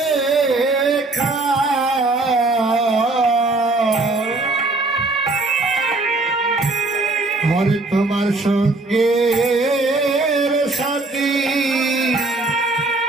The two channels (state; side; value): quieter; left; 3.2 dB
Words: হরে তোমার সঙ্গে সাথী